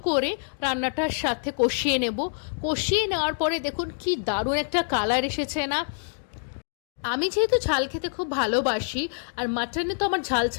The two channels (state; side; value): silent; right; digital silence